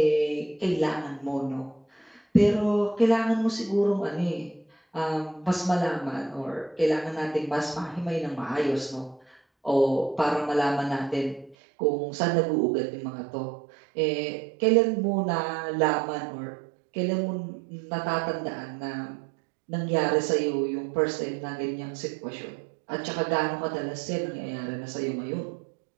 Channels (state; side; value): drops out; left; at 11.6 s